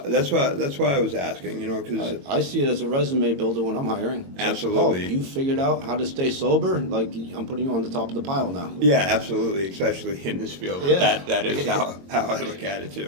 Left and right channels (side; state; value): left; late; 22 ms